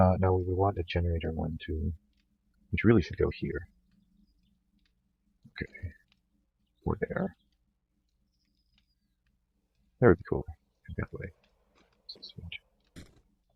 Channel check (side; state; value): both; identical; correlation 1.00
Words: we want a generator 1, 2, which really should go here. Okay, or there. That would be cool. That way.